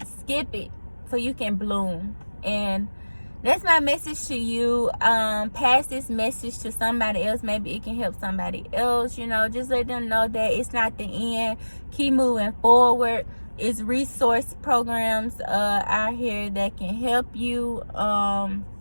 skip it so you can bloom. And that's my message to you. Pass this message to somebody else. Maybe it can help somebody else. You know, just let them know that it's not the end. Keep moving forward. It's resource programs out here that can help you. I'm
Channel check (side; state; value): both; inverted; correlation -1.00